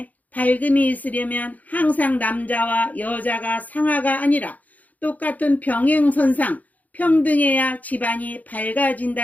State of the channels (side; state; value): right; late; 0.078 ms